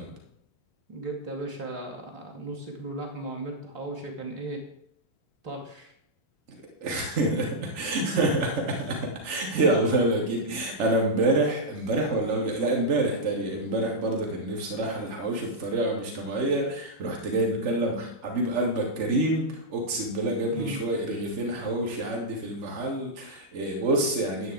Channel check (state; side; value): late; left; 3.4 ms